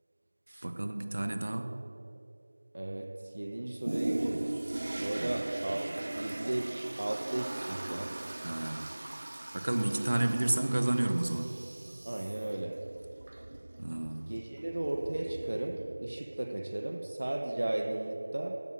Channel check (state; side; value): inverted; both; correlation -1.00